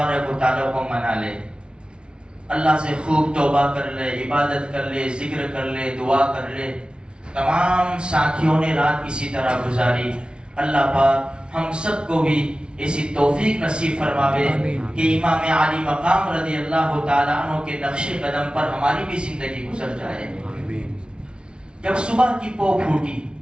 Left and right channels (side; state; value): left; late; 0.056 ms